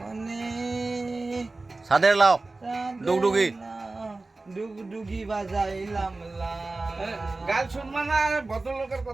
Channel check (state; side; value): quieter; left; 3.3 dB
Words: সাদের লাও ডুগডুগি ডুগডুগি বাজাইলাম লা গান শুনবা না আর ভদ্রলোকের